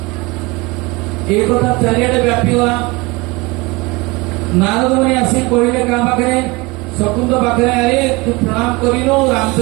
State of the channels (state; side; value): quieter; left; 24.5 dB